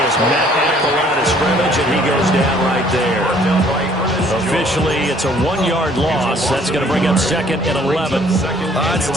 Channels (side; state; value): both; normal; correlation 0.59